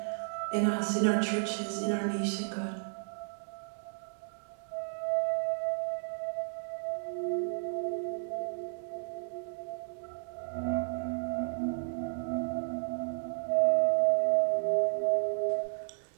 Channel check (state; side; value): silent; left; digital silence